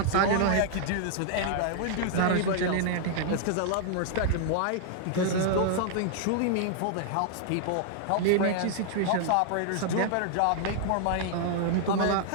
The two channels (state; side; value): different; both; correlation -0.01